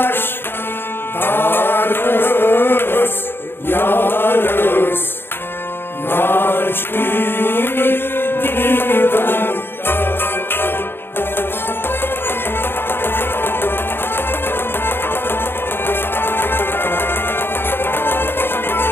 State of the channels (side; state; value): right; late; 0.10 ms